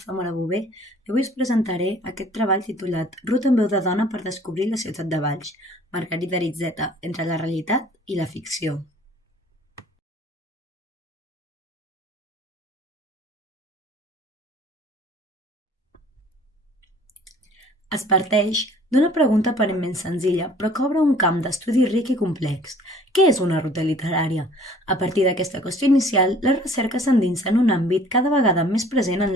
Zamora Bové i avui us presentaré aquest treball titulat Ruta en veu de dona per descobrir la ciutat de Valls, Margarida Aritzeta, entre la realitat i la ficció. Es parteix d'una pregunta aparentment senzilla, però que obre un camp d'estudi ric i complex. Què és una ruta literària? A partir d'aquesta qüestió inicial, la recerca s'endinsa en un àmbit cada vegada més present en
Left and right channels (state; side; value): normal; both; correlation 0.53